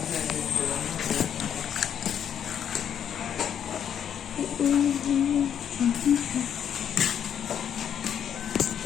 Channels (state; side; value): quieter; right; 8.9 dB